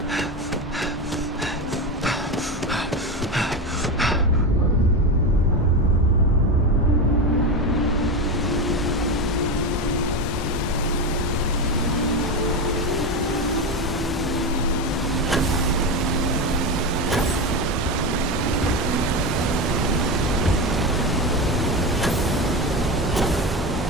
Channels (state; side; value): normal; both; correlation 0.17